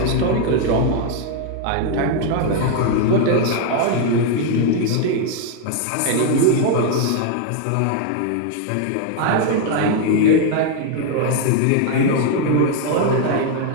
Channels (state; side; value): different; both; correlation 0.00